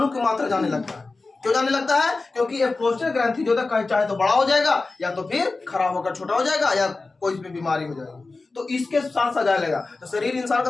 की मात्रा जाने लगता है। क्यों जाने लगता है? क्योंकि ये प्रोस्टेट ग्रंथि जो है चाहे तो बड़ा हो जाएगा या तो फिर खराब होकर छोटा हो जाएगा या कोई इसमें बीमारी हो जाएगी, तो इसके साथ साथ जाने लगा तो शरीर इंसान का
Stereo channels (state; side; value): quieter; right; 3.6 dB